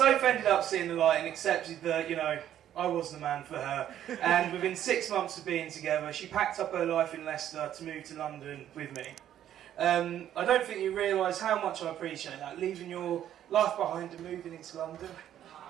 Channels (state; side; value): quieter; left; 11.1 dB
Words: ended up seeing the light and accepted that, I was the man for her. And within 6 months of being together, she packed up her life in Leicester to move to London with me. I don't think you realise how much I appreciate that, leaving your life behind and moving into London.